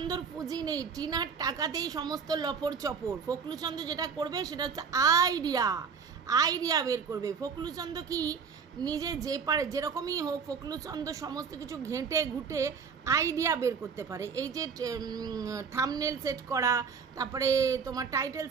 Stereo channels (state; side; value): quieter; left; 6.0 dB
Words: পুঁজি নেই, টিনার টাকাতেই সমস্ত লপর চপর। ফকলু চন্দ যেটা করবে সেটা হচ্ছে আইডিয়া বের করবে। ফকলু চন্দ কি নিজে যে পারে, যেরকমই হোক ফকলু চন্দ সমস্ত কিছু ঘেঁটে ঘুটে আইডিয়া বের করতে পারে। এই যে থাম্বনেল সেট করা, তারপরে তোমার টাইটেল